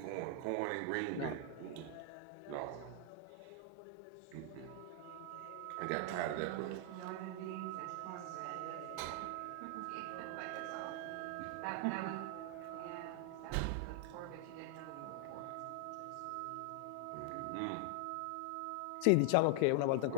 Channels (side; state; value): both; different; correlation 0.00